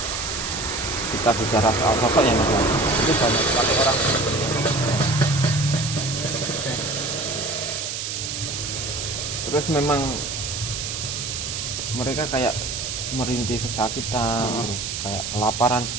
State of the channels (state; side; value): noise; right; hiss, 4 dB below the sound